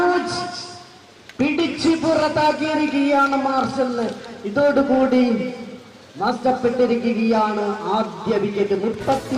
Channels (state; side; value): identical; both; correlation 1.00